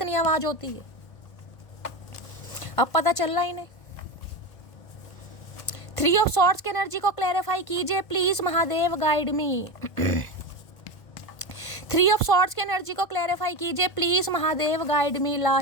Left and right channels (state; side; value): late; right; 1.5 ms